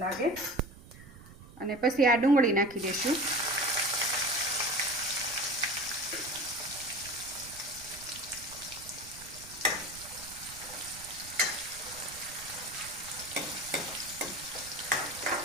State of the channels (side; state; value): right; noise; rumble, 18 dB below the sound